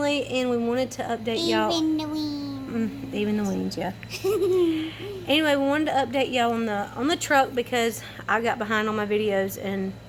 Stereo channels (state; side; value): identical; both; correlation 1.00